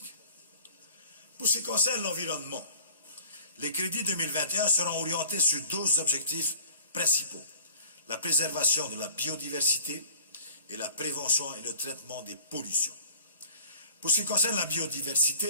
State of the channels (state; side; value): inverted; both; correlation -0.48